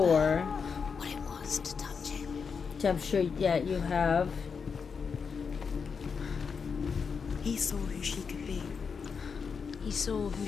What it was to touch him. Which I'm sure, yeah, you have. He saw who she could be. He saw who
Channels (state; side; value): quieter; right; 5.8 dB